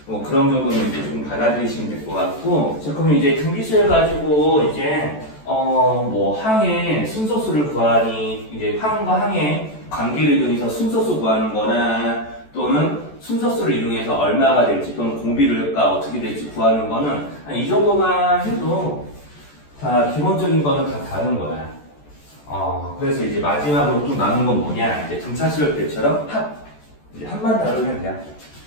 그런 정도는 이제 좀 받아들이시면 될 것 같고. 자, 그러면 이제 등비수열 가지고 이제 항의 순서수를 구하니 이제 항과 항의 관계를 이용해서 순서수 구하는 거나 또는 순서수를 이용해서 얼마가 될지 또는 공비가 어떻게 될지 구하는 거는 이 정도만 해도 다 기본적인 거는 다 다른 거야. 그래서 이제 마지막으로 좀 남은 건 뭐냐? 이제 등차수열 때처럼 이제 합만 다루면 돼요.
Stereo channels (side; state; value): right; late; 14 ms